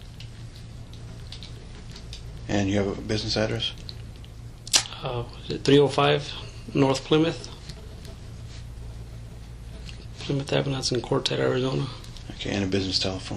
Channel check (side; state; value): both; identical; correlation 1.00